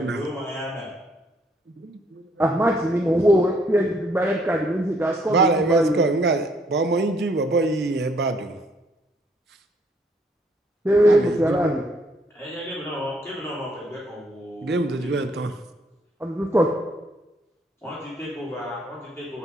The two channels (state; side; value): normal; both; correlation 0.67